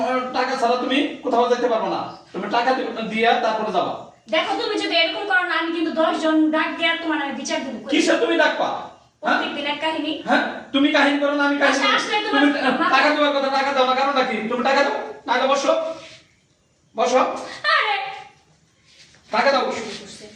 টাকা ছাড়া তুমি কোথাও যেতে পারবে না, তুমি টাকা দিয়া তারপরে যাবা। দেখো তুমি যদি এরকম করো না, আমি কিন্তু 10 জন ডাক দিয়া তোমার আমি বিচার দেব। কিসে তুমি ডাকবা? প্রত্যেকদিন এক কাহিনী। হ্যাঁ তুমি কাহিনী করো না, আমি কাহিনী আচ্ছা, আসলে তুমি তোমার টাকা দেওয়ার কথা, টাকা দাও না কারণ নাকি তুমি টাকা দাও, টাকা বসো বসো, আরে টাকা দাও।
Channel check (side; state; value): both; identical; correlation 1.00